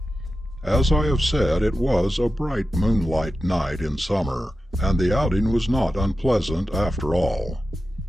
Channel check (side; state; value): both; normal; correlation 0.92